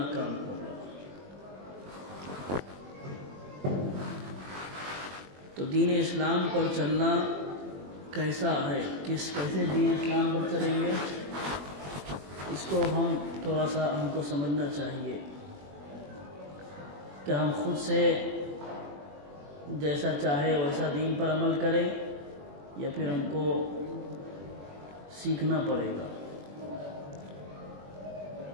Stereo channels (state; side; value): late; left; 21 ms